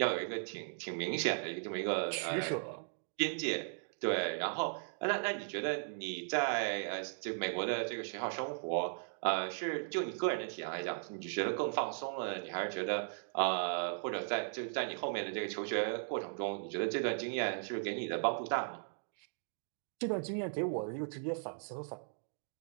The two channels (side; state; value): left; silent; digital silence